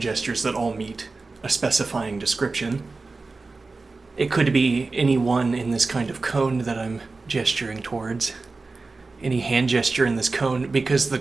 that all meet a specifying description. It could be any one in this kind of cone that I'm gesturing towards, any hand gesture in this cone, because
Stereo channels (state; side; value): quieter; left; 3.8 dB